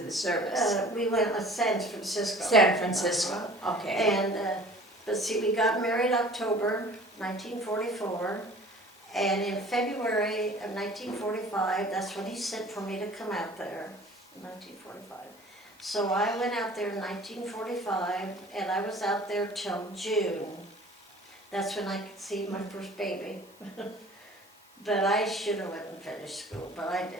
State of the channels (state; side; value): normal; both; correlation 0.47